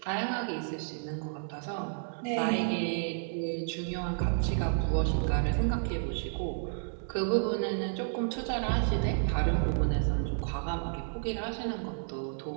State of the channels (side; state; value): left; silent; digital silence